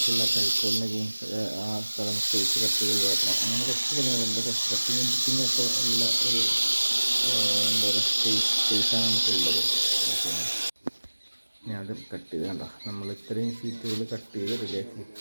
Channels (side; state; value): both; inverted; correlation -1.00